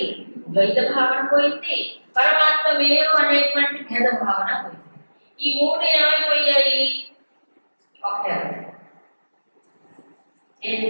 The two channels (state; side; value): inverted; both; correlation -1.00